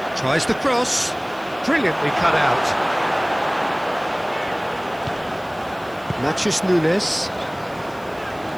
Tries the cross. Brilliantly cut out. Matches Nunes.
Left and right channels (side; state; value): right; noise; hiss, 26 dB below the sound